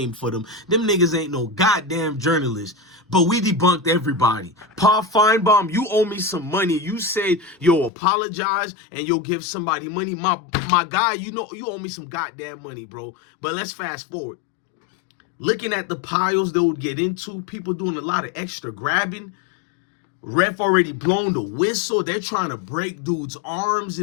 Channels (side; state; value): right; drops out; at 7.9 s